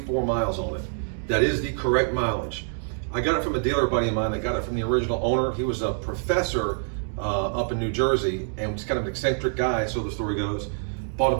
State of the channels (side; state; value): left; silent; 61 dB below the other